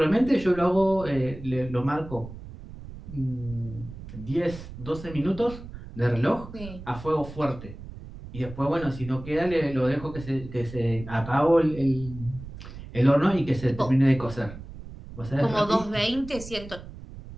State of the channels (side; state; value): right; noise; rumble, 14 dB below the sound